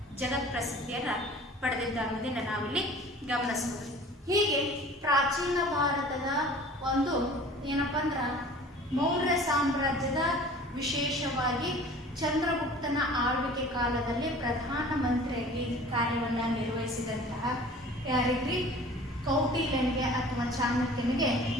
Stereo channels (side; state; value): both; normal; correlation 0.45